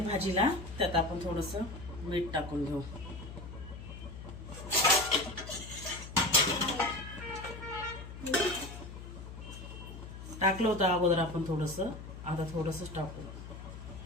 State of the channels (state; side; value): noise; left; hum, 11 dB below the sound